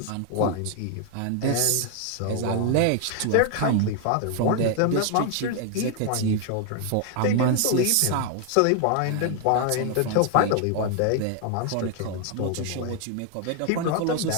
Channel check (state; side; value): different; both; correlation 0.00